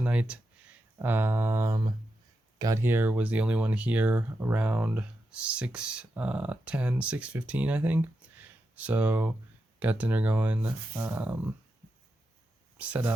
got here, was the only one here around 6:15, I think. So got dinner going, set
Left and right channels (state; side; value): normal; both; correlation 0.87